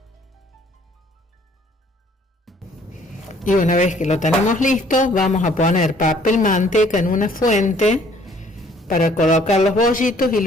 Y una vez que lo tenemos listo, vamos a poner papel manteca en una fuente para colocar los bollitos y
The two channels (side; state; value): both; normal; correlation 0.59